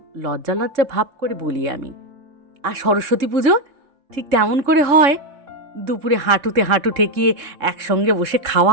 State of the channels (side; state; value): left; late; 3.6 ms